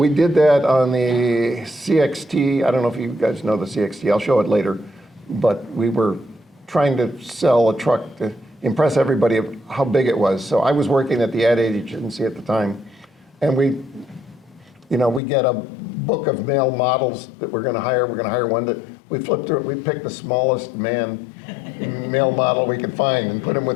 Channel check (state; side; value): drops out; right; at 15.2 s